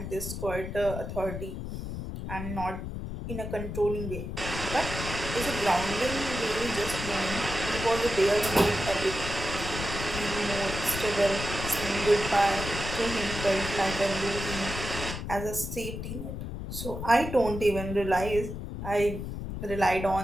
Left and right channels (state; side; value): noise; left; rumble, 6 dB below the sound